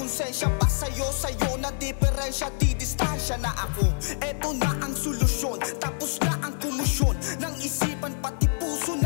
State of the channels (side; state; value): right; silent; 61 dB below the other